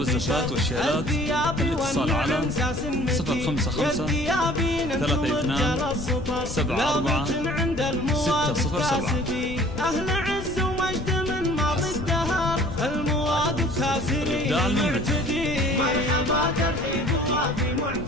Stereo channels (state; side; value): noise; left; rumble, 8 dB below the sound